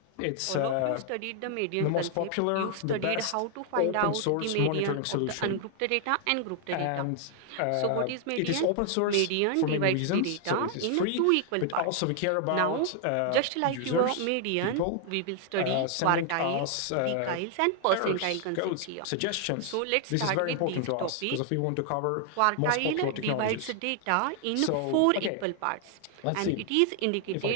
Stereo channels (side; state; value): both; different; correlation 0.00